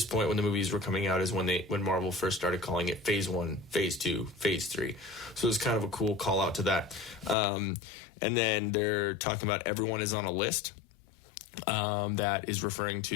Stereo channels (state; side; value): drops out; right; at 7.4 s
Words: point when the movies were coming out is when Marvel first started calling it Phase 1, Phase 2, Phase 3. So it's kind of a cool call out to that. And then they're talking about everyone is on a list that is referring